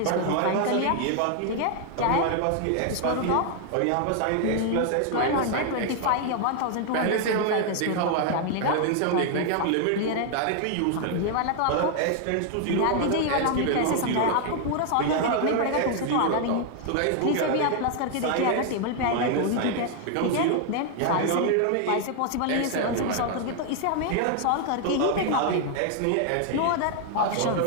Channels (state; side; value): different; both; correlation 0.00